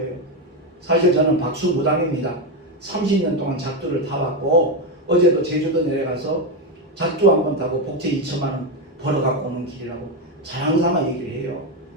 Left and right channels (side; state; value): both; normal; correlation 0.09